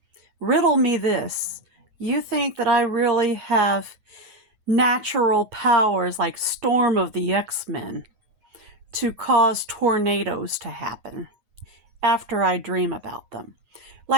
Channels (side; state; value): left; late; 9.5 ms